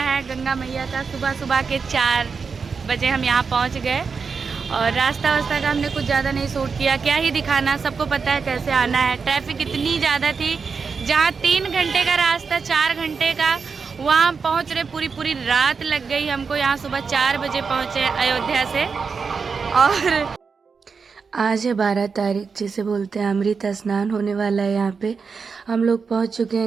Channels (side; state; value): left; quieter; 5.3 dB